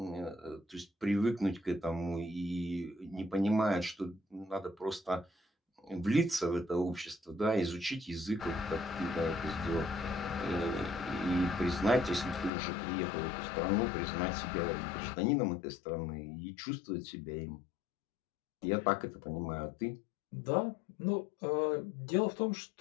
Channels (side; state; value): right; drops out; at 12.5 s